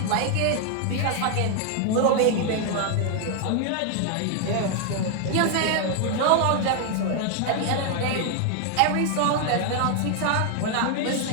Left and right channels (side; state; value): both; different; correlation 0.00